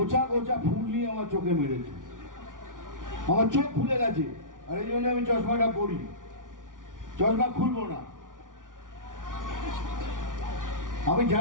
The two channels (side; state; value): left; late; 0.88 ms